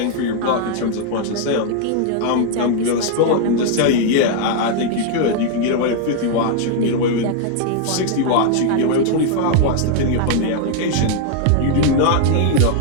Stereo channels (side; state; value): both; different; correlation 0.00